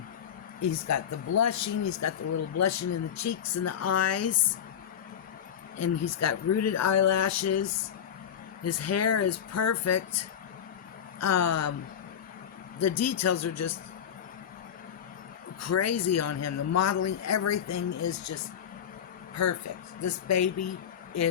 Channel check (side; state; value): right; quieter; 8.8 dB